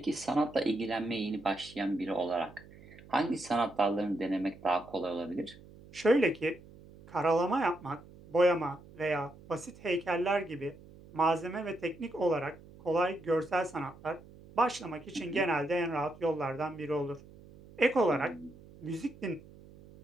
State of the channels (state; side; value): noise; right; hum, 21 dB below the sound